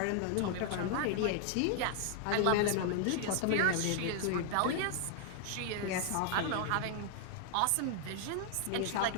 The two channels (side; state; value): both; different; correlation 0.00